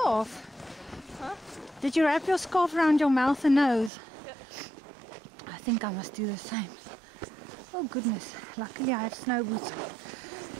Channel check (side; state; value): left; drops out; at 3.9 s